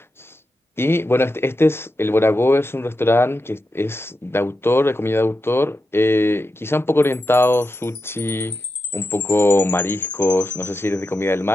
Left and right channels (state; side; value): normal; both; correlation 0.89